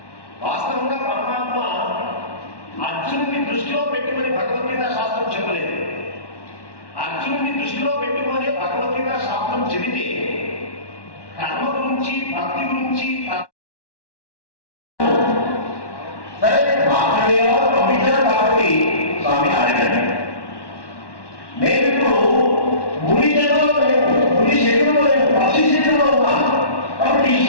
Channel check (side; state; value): right; late; 1.1 ms